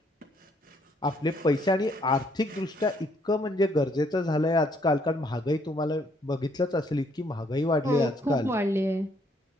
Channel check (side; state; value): both; normal; correlation 0.68